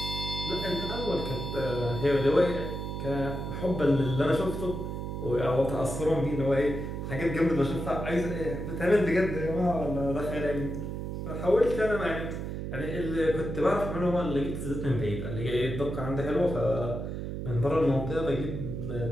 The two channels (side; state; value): right; noise; hum, 5 dB below the sound